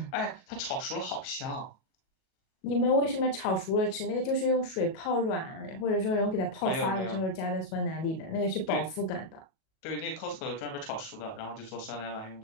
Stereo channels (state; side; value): late; right; 37 ms